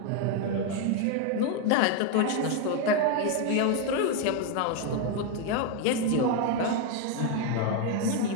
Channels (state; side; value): different; both; correlation 0.01